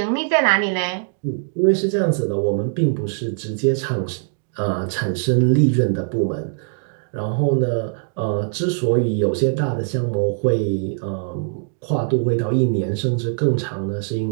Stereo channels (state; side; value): silent; left; digital silence